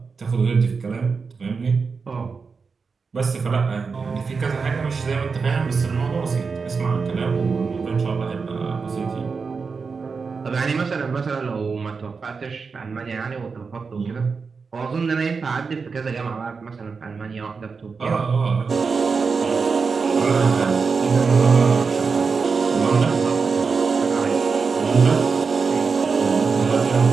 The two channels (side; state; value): left; quieter; 5.0 dB